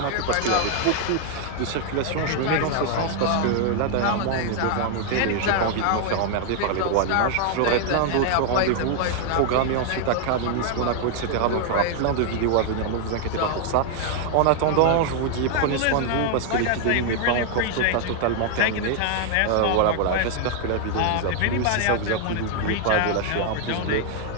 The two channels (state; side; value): different; both; correlation 0.00